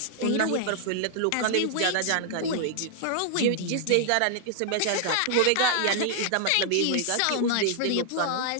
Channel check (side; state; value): both; different; correlation 0.00